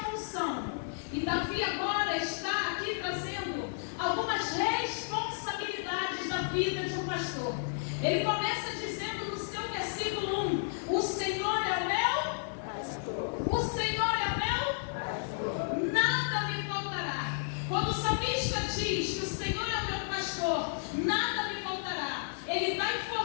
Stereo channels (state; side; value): silent; right; digital silence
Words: E Davi agora está aqui trazendo algumas responsabilidades da vida de um pastor. Ele começa dizendo no seu versículo 1: o Senhor é o meu pastor. O Senhor é o meu pastor. Nada me faltará. Quando o salmista diz que o Senhor é o meu pastor, nada me faltará, ele está